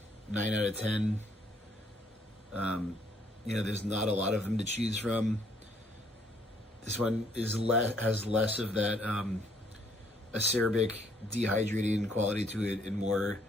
9 out of 10. You know, there's not a lot of them to choose from. This one is has less of that acerbic, dehydrating quality to it, and more.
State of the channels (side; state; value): both; normal; correlation 0.66